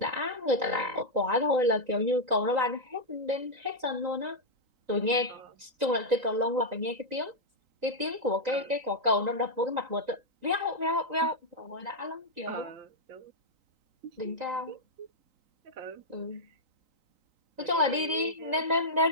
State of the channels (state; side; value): late; left; 3.9 ms